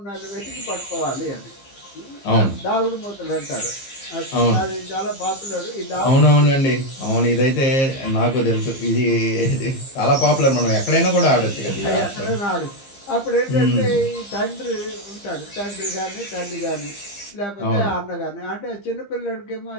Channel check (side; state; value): right; late; 15 ms